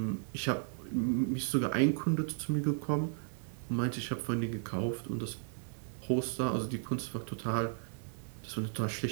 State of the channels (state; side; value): silent; left; digital silence